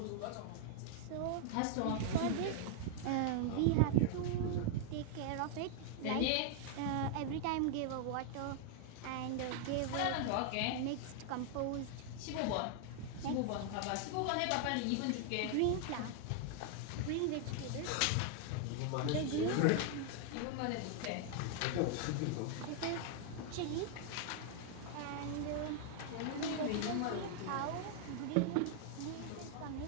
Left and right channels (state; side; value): different; both; correlation 0.00